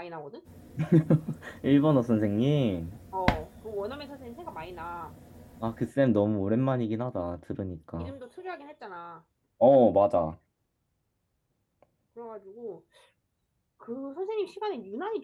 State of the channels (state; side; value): identical; both; correlation 1.00